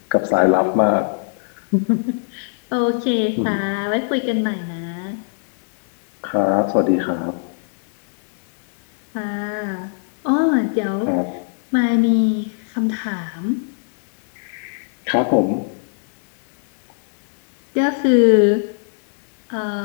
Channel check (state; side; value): silent; right; digital silence